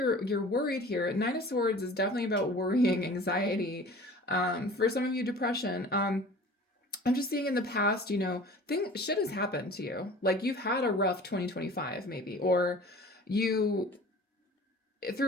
worried here. Nine of Swords is definitely about worrying, anxiety. For some of you, depression. I'm just seeing in the past, you know, shit has happened to you. Like you've had a rough 2025 maybe, or you,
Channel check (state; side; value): normal; both; correlation 0.43